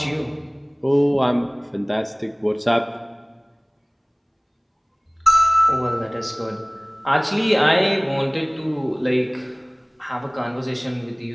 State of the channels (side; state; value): both; identical; correlation 1.00